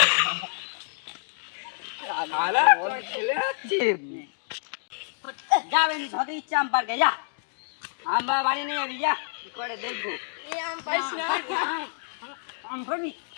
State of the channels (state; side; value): silent; right; digital silence